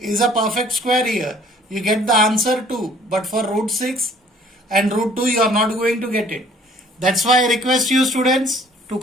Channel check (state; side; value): normal; both; correlation 0.56